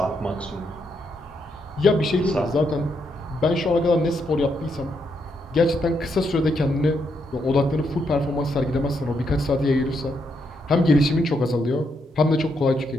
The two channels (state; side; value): normal; both; correlation 0.78